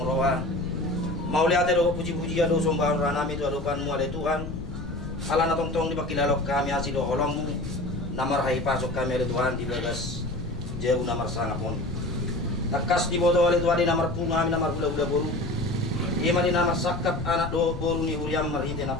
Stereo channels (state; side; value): noise; left; rumble, 8 dB below the sound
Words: roa mau lihat do puji-puji ado sombang ranami tu adokan mu ada Tuhan ala na tong-tong di pakilalok kami asido holong namar hai pasok kami ada Tuhan di bagas jauh namar sangapon takas di bodo oleh Tuhan di namar punga kami namar gula-gula boru ima di namar sakap anak do boru ni huriam marhinte na